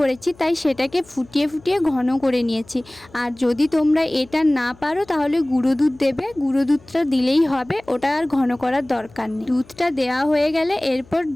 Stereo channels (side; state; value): left; noise; hum, 26 dB below the sound